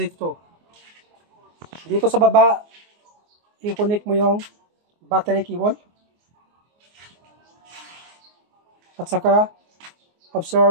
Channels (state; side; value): late; left; 24 ms